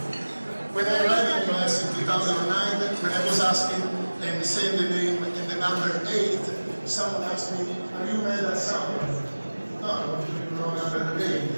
When I arrived in the US in 2009, when I was asking and saying the name and the number 8, someone asked me, are you mad at someone? No, no, number 8.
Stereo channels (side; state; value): both; inverted; correlation -1.00